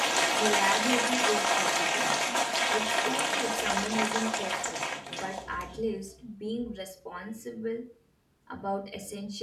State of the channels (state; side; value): identical; both; correlation 1.00